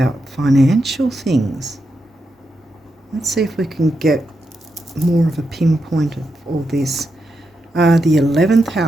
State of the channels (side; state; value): both; normal; correlation 0.85